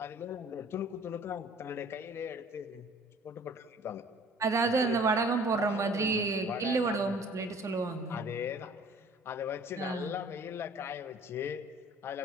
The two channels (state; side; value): normal; both; correlation 0.51